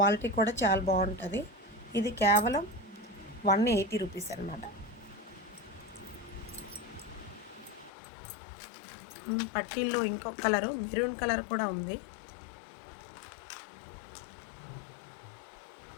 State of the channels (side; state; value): right; drops out; at 7.9 s